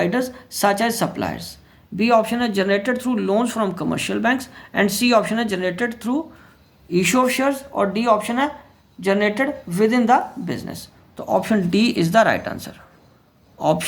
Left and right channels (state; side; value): identical; both; correlation 1.00